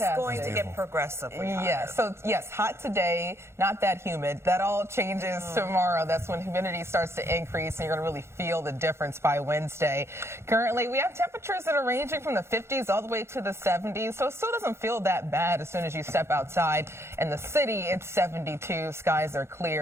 it's going to get progressively hotter. Yes, so yes, hot today, not that humid. That all changes tomorrow. That's when humidity starts to increase and you're going to really feel the difference by Wednesday. Currently, we have temperatures that are ranging from the 50s all the way to the 70s, so it still doesn't feel that bad as soon as you step outside. In the city, it's 72, skies are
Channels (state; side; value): late; left; 0.13 ms